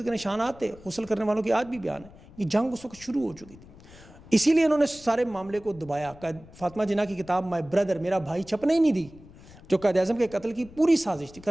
کے نشانات تھے, غسل کرنے والوں کی آج بھی بیان ہے. یہ جنگ اس وقت شروع ہو چکی تھی. اسی لیے انہوں نے سارے معاملے کو دبایا. فاطمہ جناح کی کتاب مائی بردر, میرا بھائی, چھپنے ہی نہیں دی, جو قائد اعظم کے قتل کی پوری سازش تھی.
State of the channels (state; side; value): noise; left; rumble, 21 dB below the sound